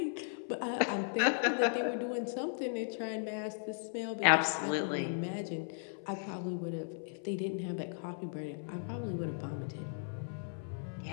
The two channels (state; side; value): silent; right; 54 dB below the other